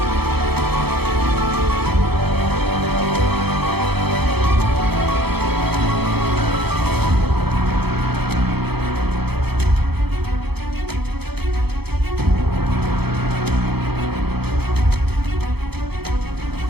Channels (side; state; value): left; late; 0.97 ms